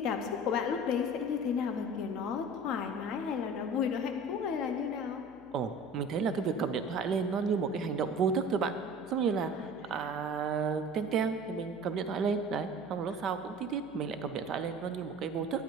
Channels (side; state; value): left; noise; hum, 26 dB below the sound